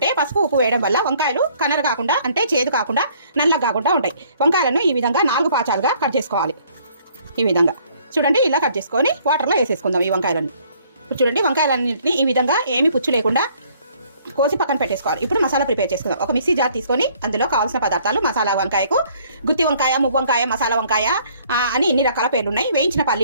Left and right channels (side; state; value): both; inverted; correlation -0.61